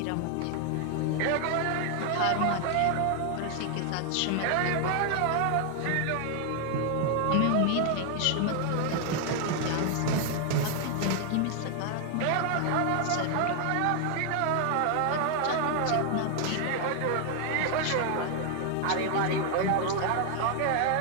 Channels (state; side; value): different; both; correlation 0.00